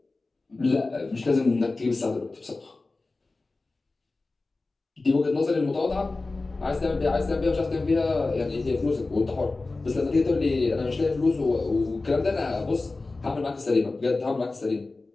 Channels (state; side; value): quieter; right; 3.4 dB